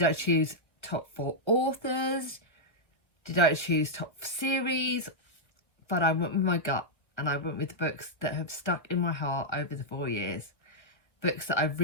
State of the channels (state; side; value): late; right; 1.6 ms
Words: I choose top 4 authors? Did I choose top series? But I went with my gut and I went with the books that have stuck in my heart over the 4 years. Books that I've